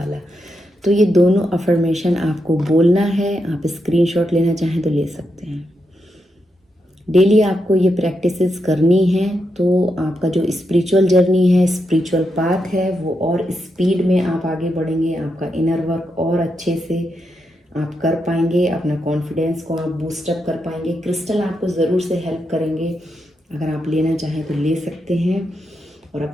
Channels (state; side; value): normal; both; correlation 0.84